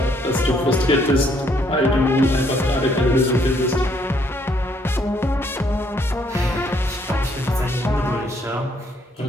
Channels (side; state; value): both; normal; correlation 0.68